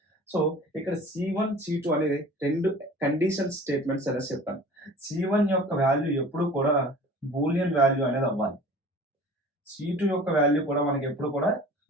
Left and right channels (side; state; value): both; normal; correlation 0.43